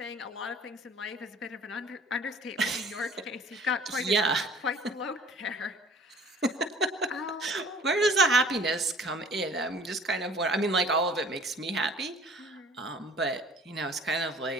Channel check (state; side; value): normal; both; correlation 0.50